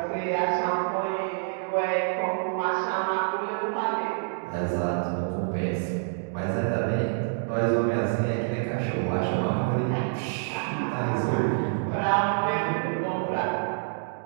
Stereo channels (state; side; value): silent; left; digital silence